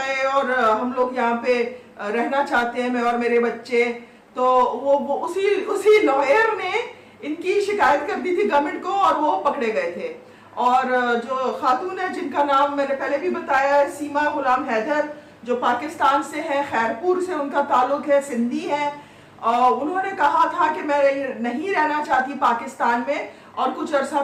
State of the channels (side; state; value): both; identical; correlation 1.00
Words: और हम लोग यहाँ पे रहना चाहते हैं, मैं और मेरे बच्चे। तो वो उसी लॉयर ने इनकी शिकायत कर दी थी गवर्नमेंट को और वो पकड़े गए थे। और जो खातून है जिनका नाम मैंने पहले भी बताया है, सीमा गुलाम हैदर, जो पाकिस्तान से है, खैरपुर से उनका ताल्लुक है, सिंधी है। उन्होंने कहा था कि मैं नहीं रहना चाहती पाकिस्तान में। और कुछ अर्सा